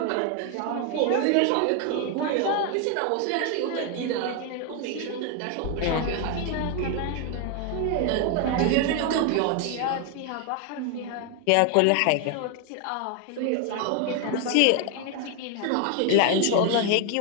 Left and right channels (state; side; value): different; both; correlation 0.01